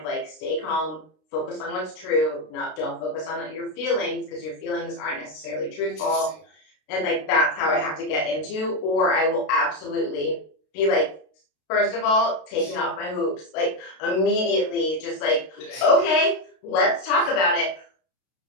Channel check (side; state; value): right; late; 32 ms